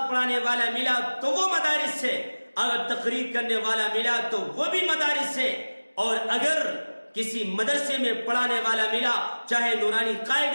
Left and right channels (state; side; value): inverted; both; correlation -1.00